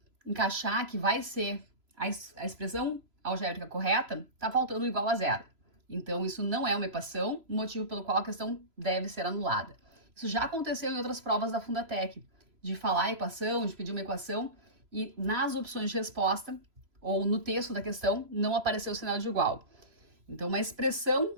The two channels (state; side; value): late; left; 3.0 ms